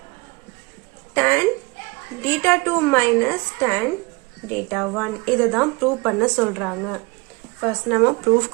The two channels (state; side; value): quieter; left; 26.0 dB